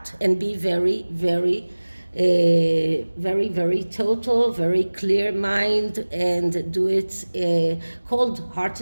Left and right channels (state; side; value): inverted; both; correlation -1.00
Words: and be very, very very, very total, very clear mind, and do it